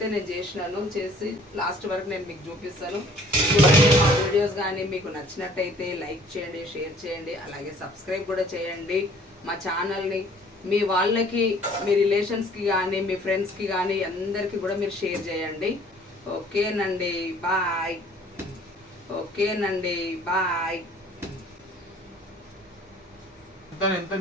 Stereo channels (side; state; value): both; normal; correlation 0.55